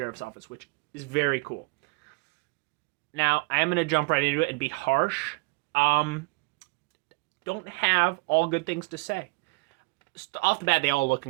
office, which is very cool. Now, I am going to jump right into it and be harsh. Don't have all good things to say. Off the bat, they all look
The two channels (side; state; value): left; quieter; 28.2 dB